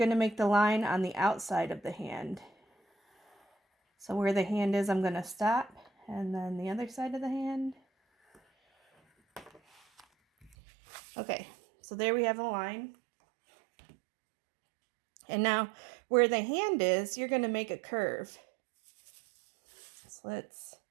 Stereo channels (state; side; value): drops out; left; at 10.5 s